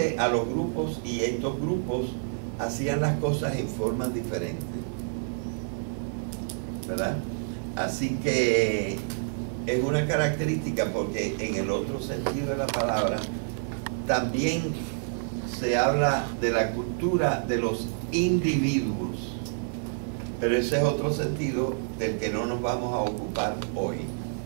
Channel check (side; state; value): left; silent; digital silence